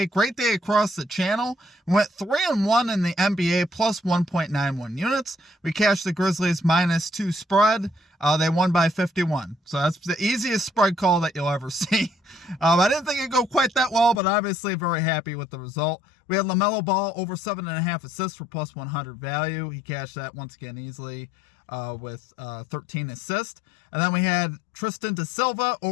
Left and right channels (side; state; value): right; drops out; at 14.2 s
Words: Great day across the channel. We went 3-1 in the NBA, plus 1.91 units. We cashed the Grizzlies -2 spread. They won by 51. So that's the easiest spread call that you'll ever see. I didn't think it'd go quite that well, but obviously very happy with the result. We had LaMelo Ball over 7.5 assists for plus 100 value. He cashed that once again easily with 13 assists. And then we had Tristan da Silva